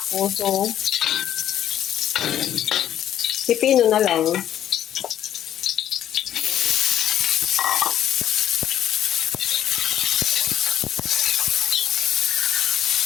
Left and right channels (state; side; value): quieter; right; 11.0 dB